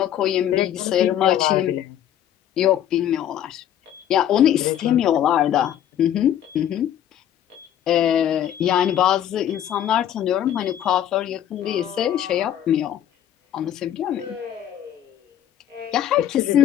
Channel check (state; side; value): quieter; right; 10.7 dB